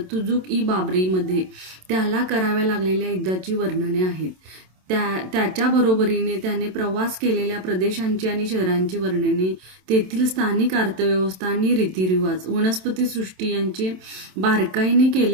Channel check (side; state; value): left; late; 27 ms